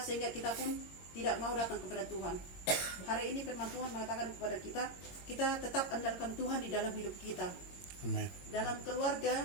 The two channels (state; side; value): late; right; 22 ms